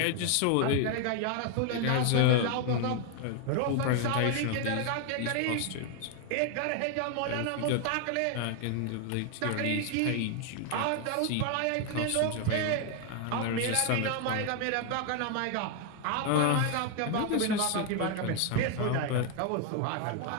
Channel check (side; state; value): both; different; correlation 0.00